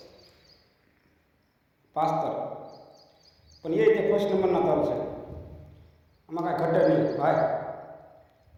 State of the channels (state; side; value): identical; both; correlation 1.00